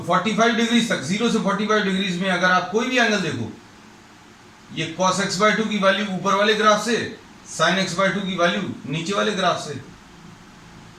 45 डिग्री तक, 0 से 45 डिग्री में अगर आप कोई भी एंगल देखो, ये cos x बाई 2 की वैल्यू ऊपर वाले ग्राफ से, sin x बाई 2 की वैल्यू नीचे वाले ग्राफ से,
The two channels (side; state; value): both; identical; correlation 1.00